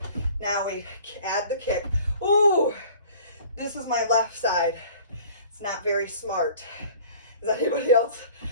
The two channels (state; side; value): inverted; both; correlation -0.47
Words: Now we add the kick. Ooh, this is my left side. It's not very smart. Is anybody else